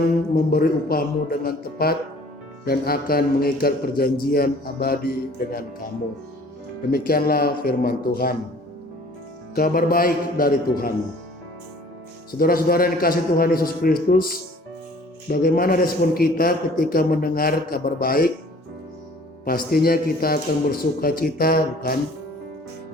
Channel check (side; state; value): both; normal; correlation 0.52